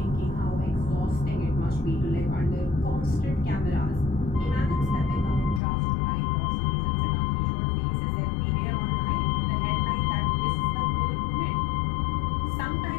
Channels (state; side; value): drops out; right; at 5.6 s